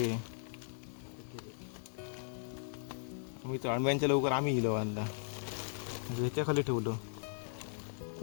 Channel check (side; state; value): right; silent; digital silence